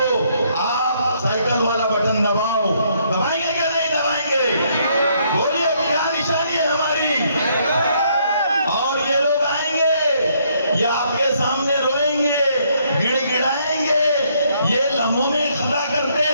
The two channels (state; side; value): inverted; both; correlation -0.70